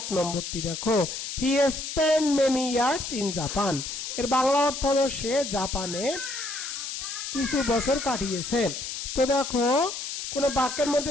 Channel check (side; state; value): left; noise; hiss, 6 dB below the sound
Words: নম্বরটি দেখো he spent many years in Japan, এর বাংলা অর্থ হলো সে জাপানে কিছু বছর কাটিয়েছে। তো দেখো কোন বাক্যের